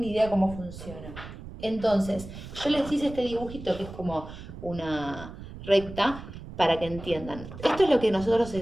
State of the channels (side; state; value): right; noise; rumble, 13 dB below the sound